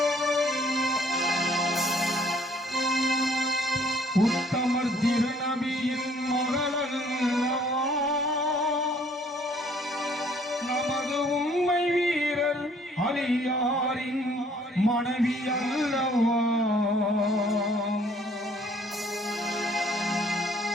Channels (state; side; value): normal; both; correlation 0.60